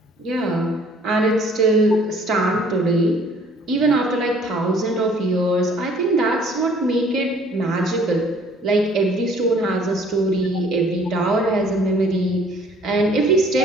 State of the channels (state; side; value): normal; both; correlation 0.56